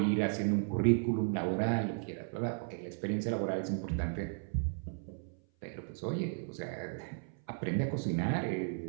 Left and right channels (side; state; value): left; silent; 54 dB below the other